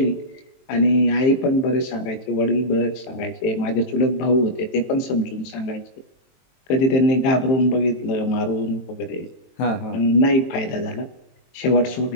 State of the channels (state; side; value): late; right; 22 ms